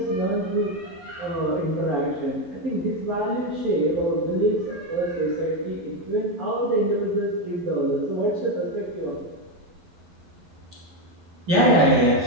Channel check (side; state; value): left; late; 12 ms